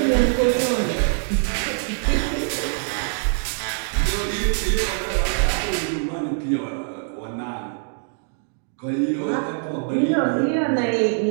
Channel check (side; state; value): left; silent; 62 dB below the other